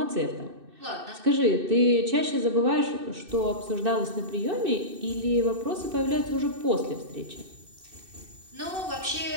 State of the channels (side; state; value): left; late; 2.6 ms